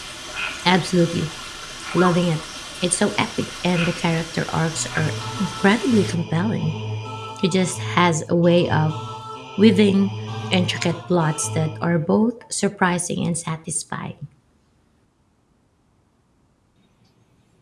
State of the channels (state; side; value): identical; both; correlation 1.00